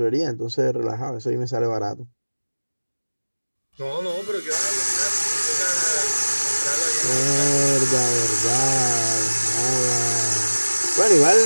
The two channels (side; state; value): both; inverted; correlation -1.00